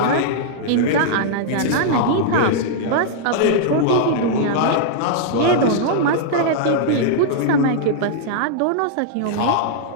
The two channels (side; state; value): both; different; correlation -0.01